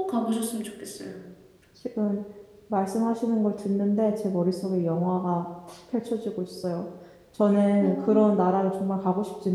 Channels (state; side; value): identical; both; correlation 1.00